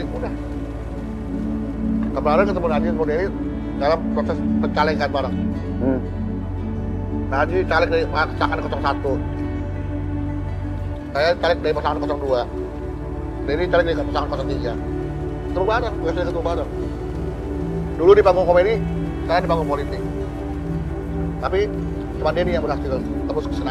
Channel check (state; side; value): identical; both; correlation 1.00